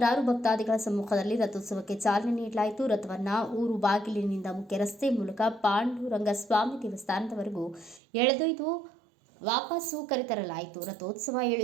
ಭಕ್ತಾದಿಗಳ ಸಮ್ಮುಖದಲ್ಲಿ ರಥೋತ್ಸವಕ್ಕೆ ಚಾಲನೆ ನೀಡಲಾಯಿತು. ರಥವನ್ನು ಊರು ಬಾಗಿಲಿನಿಂದ ಮುಖ್ಯ ರಸ್ತೆ ಮೂಲಕ ಪಾಂಡುರಂಗ ಸ್ವಾಮಿ ದೇವಸ್ಥಾನದವರೆಗೂ ಎಳೆದೊಯ್ದು ವಾಪಸ್ಸು ಕರೆತರಲಾಯಿತು. ರಥೋತ್ಸವ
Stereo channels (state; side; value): drops out; left; at 8.0 s